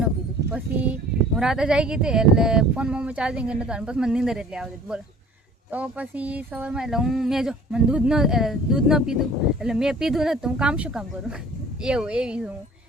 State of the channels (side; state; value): both; normal; correlation 0.49